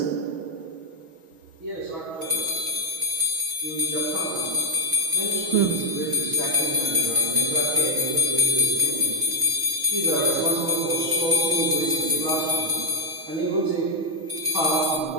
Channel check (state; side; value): late; left; 6.2 ms